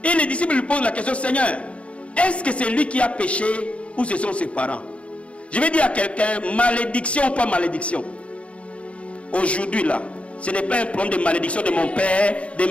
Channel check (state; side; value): late; right; 0.062 ms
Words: Et les disciples lui posent la question, Seigneur, est-ce que c'est lui qui a péché ou ce sont ses parents? Je vais dire à quelqu'un, malédiction ou pas malédiction. Aujourd'hui là, ce n'est pas un problème de malédiction de mon père, de